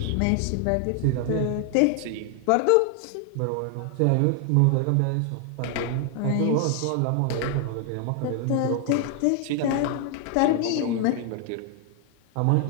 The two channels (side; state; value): both; different; correlation 0.00